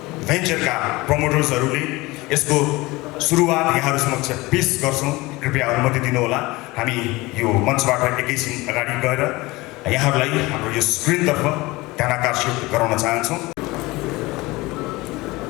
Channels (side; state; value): right; quieter; 21.4 dB